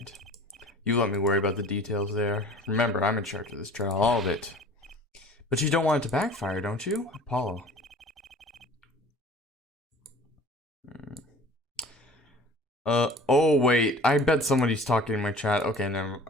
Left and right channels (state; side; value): normal; both; correlation 0.45